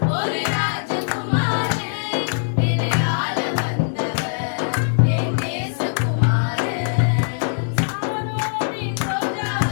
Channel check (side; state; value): right; silent; digital silence